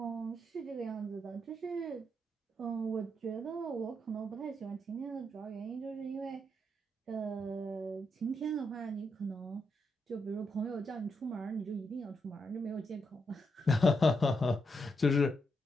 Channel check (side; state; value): both; normal; correlation 0.81